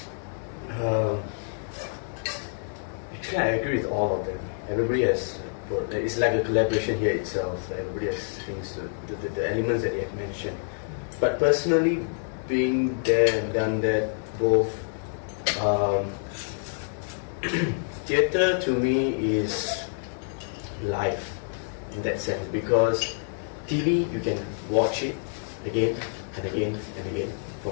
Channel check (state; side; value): silent; right; digital silence